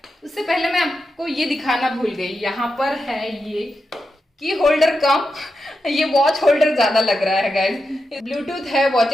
उससे पहले मैं आपको ये दिखाना भूल गई, यहाँ पर है ये की होल्डर कम ये वॉच होल्डर ज्यादा लग रहा है गाइज। ब्लूटूथ है,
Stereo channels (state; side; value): normal; both; correlation 0.88